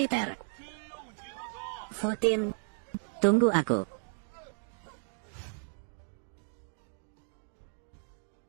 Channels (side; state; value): left; silent; 55 dB below the other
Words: Futin, tunggu aku.